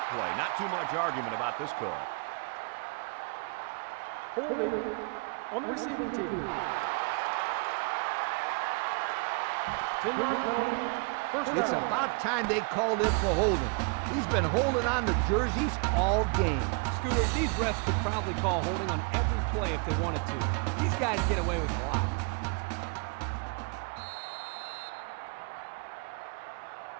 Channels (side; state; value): left; quieter; 35.7 dB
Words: play. Not too much argument about this call. Holding on the receiving team. 10-yard penalty. First down. It's about time they called him for holding. He's been holding on to jerseys all game. Scooter, these refs could probably call holding on every play if they wanted to. These guys get away with a lot.